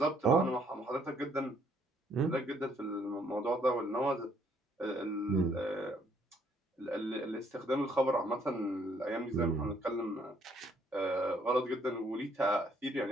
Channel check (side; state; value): both; normal; correlation 0.66